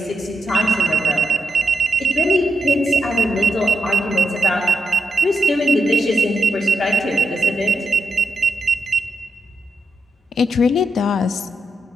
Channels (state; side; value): normal; both; correlation 0.84